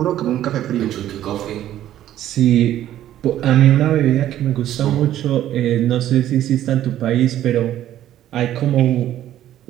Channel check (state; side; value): quieter; left; 12.3 dB